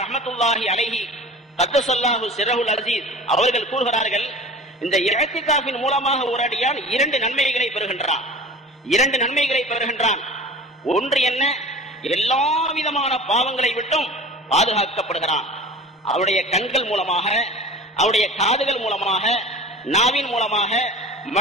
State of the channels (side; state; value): both; normal; correlation 0.39